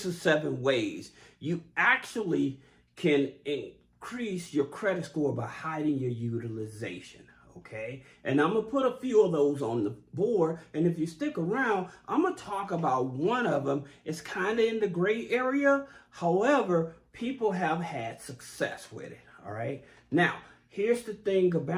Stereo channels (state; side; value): identical; both; correlation 1.00